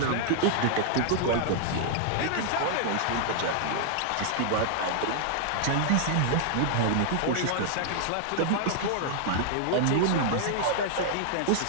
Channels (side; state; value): both; different; correlation -0.01